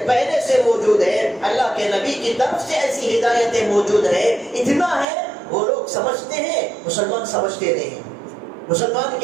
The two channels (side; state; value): left; drops out; at 5.1 s